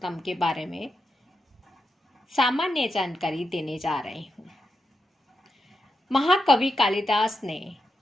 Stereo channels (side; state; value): both; normal; correlation 0.87